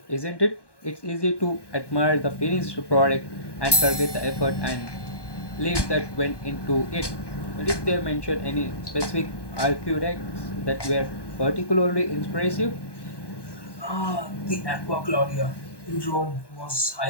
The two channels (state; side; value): late; right; 1.2 ms